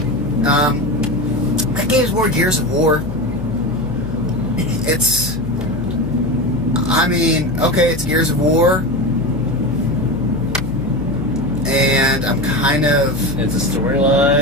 That game's more Gears of War. It's Gears of War, and I'm kind of... It's a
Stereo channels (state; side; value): noise; left; hum, 10 dB below the sound